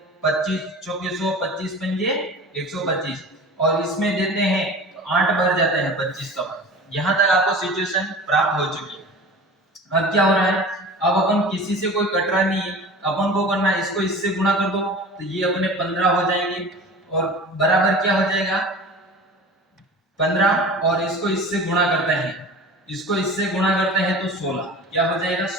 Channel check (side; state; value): both; normal; correlation 0.38